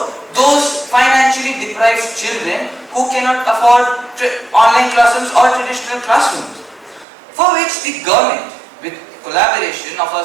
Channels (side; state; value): left; drops out; at 7.1 s